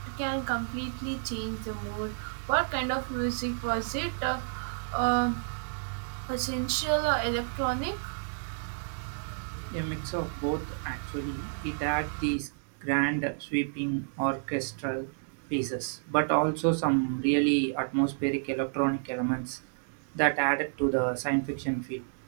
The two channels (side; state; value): left; silent; digital silence